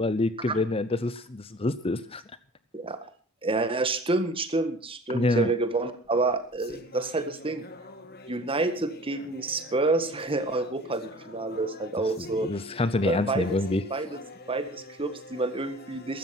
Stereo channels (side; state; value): both; normal; correlation 0.45